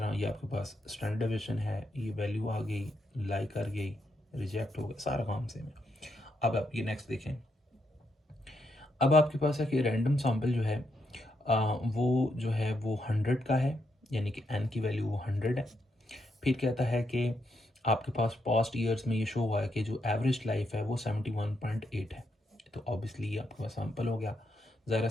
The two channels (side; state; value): both; normal; correlation 0.80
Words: ये आपके पास स्टैंडर्ड डिवीजन है, ये वैल्यू आ गई, लाइक कर गई, रिजेक्ट हो गया, सारा काम सेम है। अब आप ये नेक्स्ट देखें। अब आपके पास है कि रैंडम सैम्पल जो है वो जो है वो 100 का है, यानी कि एन की वैल्यू वो 100 है। फिर कहता है कि आपके पास पास्ट ईयर्स में ये शो हुआ है कि जो एवरेज लाइफ है वो 71.8 है। तो ऑब्वियसली ये आपके पास सैम्पल हो गया। ज़रा